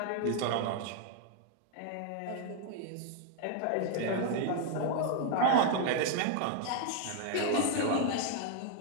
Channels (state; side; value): different; both; correlation 0.00